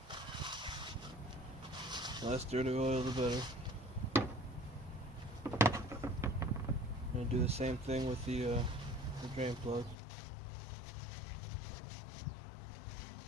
The less dirty oil, the better. I'm going to do the same thing with the drain plug.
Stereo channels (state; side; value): drops out; right; at 10.0 s